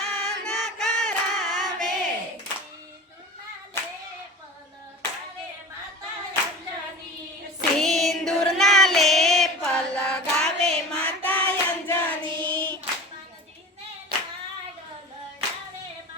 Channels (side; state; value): both; normal; correlation 0.35